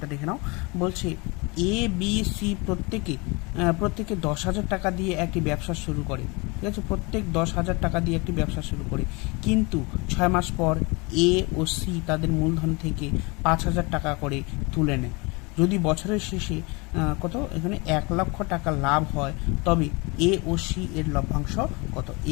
দেখে নাও। বলছি এ বি সি প্রত্যেকে 10,000 টাকা দিয়ে একটি ব্যবসা শুরু করে, ঠিক আছে? প্রত্যেক 10,000 টাকা দিয়ে একটি ব্যবসা শুরু করে, কিন্তু 6 মাস পর এ ও সি তাদের মূলধন থেকে 5,000 টাকা করে তুলে নেয়। যদি বছরের শেষে কত এখানে 1,00,000 টাকা লাভ হয়, তবে এ ও সি এর লভ্যাংশ কত?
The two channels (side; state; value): right; quieter; 27.5 dB